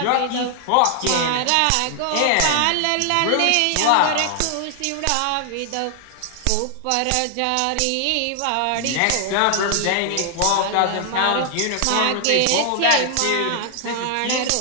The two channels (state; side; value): different; both; correlation 0.00